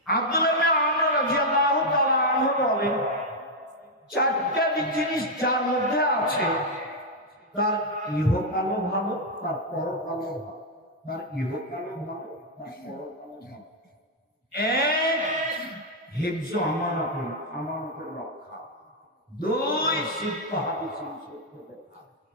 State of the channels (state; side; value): normal; both; correlation 0.00